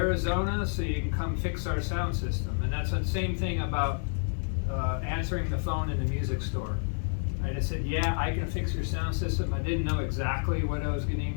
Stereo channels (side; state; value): right; silent; 58 dB below the other